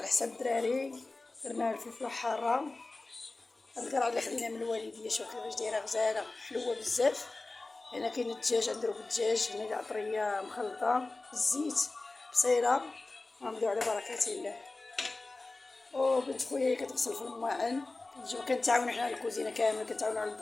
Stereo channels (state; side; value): quieter; right; 3.3 dB